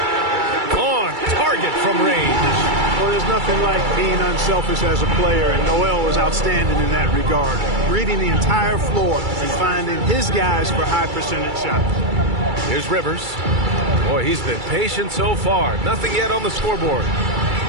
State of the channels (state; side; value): late; left; 2.3 ms